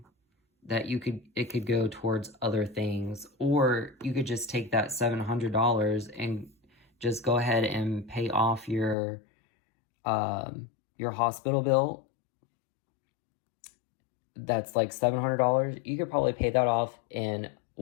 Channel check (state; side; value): drops out; right; at 9.0 s